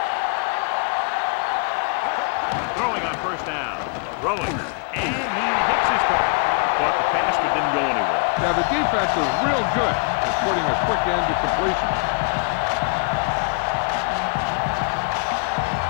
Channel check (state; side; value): quieter; right; 38.4 dB